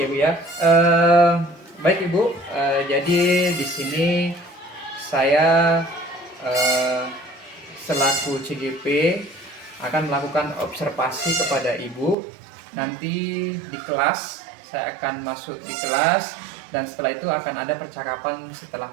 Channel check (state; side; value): drops out; left; at 12.2 s